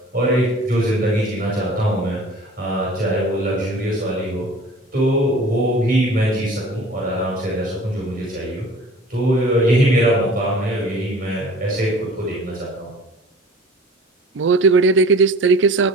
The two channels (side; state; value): both; normal; correlation 0.45